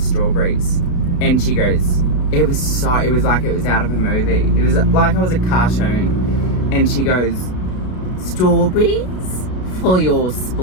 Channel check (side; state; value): right; late; 33 ms